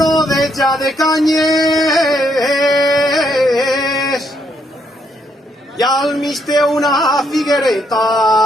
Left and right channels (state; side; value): normal; both; correlation 0.74